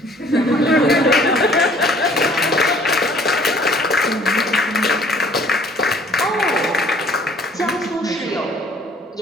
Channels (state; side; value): normal; both; correlation 0.56